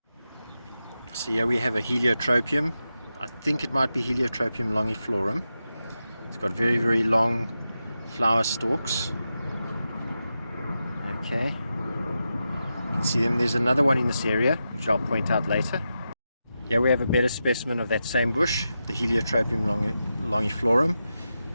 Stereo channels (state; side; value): inverted; both; correlation -0.89